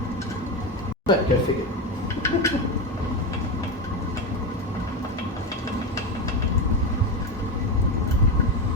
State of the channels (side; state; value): both; normal; correlation 0.15